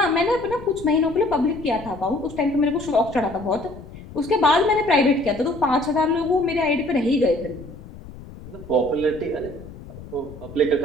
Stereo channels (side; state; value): left; noise; rumble, 16 dB below the sound